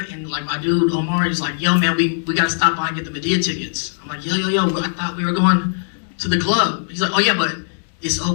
and like my dude Omar is like, yo man, we gotta stop by and get the Medea tickets. I'm like, yo, I thought we were going to the club. He's like, oh yeah, but it's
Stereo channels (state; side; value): silent; right; digital silence